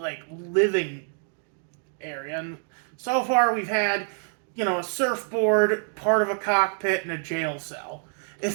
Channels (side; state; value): left; silent; 61 dB below the other